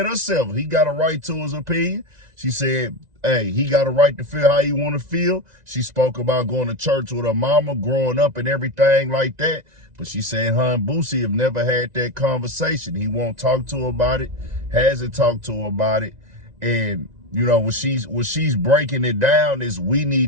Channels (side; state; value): left; late; 2.0 ms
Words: herself, he got a right to his opinion. She said, hey, he got a right to feel how he want to feel. She spoke about going to church with her mama, growing up and everything like that. But she said her and Boosie have never had that conversation. He won't talk to her about it, hasn't talked to her about it. And you know, what she's breaking it down is we